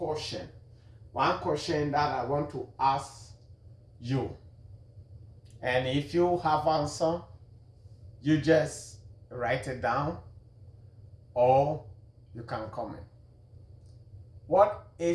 One question that I want to ask you. And if you have answer, you just write it down or you can comment. What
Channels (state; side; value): identical; both; correlation 1.00